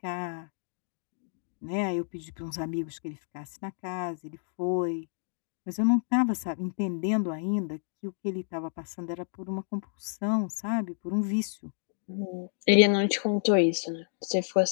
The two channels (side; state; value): right; silent; digital silence